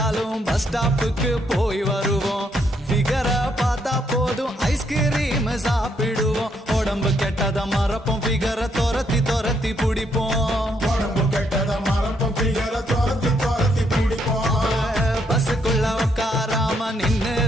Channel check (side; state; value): both; normal; correlation 0.74